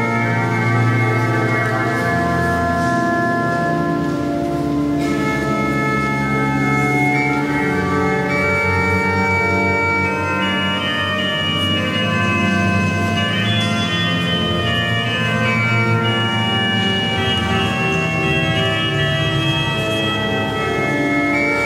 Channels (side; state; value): both; identical; correlation 1.00